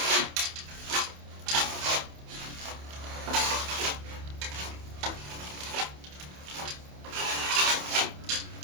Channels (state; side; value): late; left; 28 ms